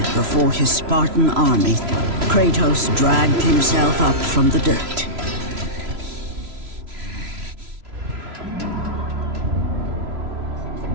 before his Spartan army, Kratos dragged himself up from the dirt.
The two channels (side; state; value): left; late; 3.0 ms